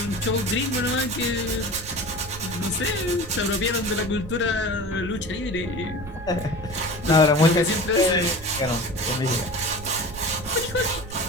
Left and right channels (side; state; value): right; noise; rumble, 13 dB below the sound